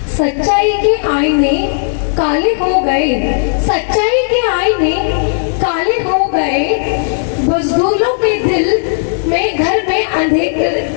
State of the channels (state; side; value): silent; right; digital silence